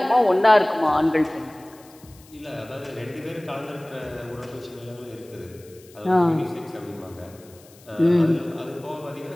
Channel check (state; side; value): noise; left; hiss, 25 dB below the sound